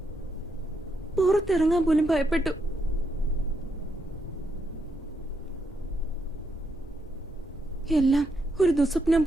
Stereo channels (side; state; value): both; normal; correlation 0.80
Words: പുറത്തിറങ്ങാൻ പോലും ഭയപ്പെട്ടു. എല്ലാം ഒരു ദുസ്വപ്നം